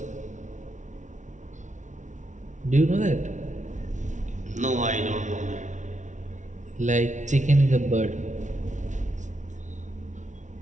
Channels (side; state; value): left; late; 0.36 ms